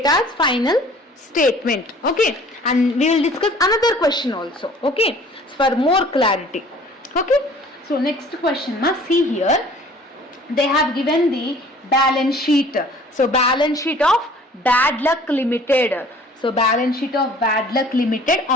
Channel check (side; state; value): both; normal; correlation 0.51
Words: final statement. Okay, and we will discuss another question also. Okay, for more clarity. Okay, so next question, see here they have given the balance sheet. So balance sheet of Bad Luck Limited. So balance sheet of Bad Luck Limited